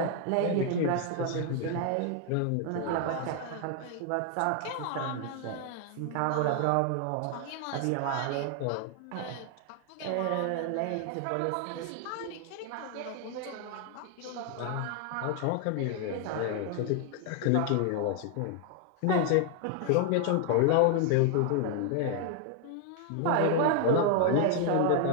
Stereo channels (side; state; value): both; different; correlation 0.00